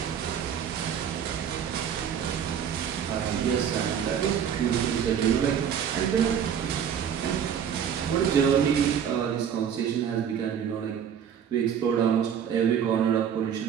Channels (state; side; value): quieter; left; 8.4 dB